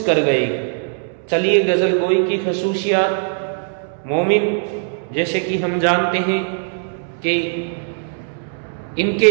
कर गए। चलिए, गज़ल गोई की खसूसियात। मोमिन, जैसे कि हम जानते हैं कि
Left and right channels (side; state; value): left; silent; 66 dB below the other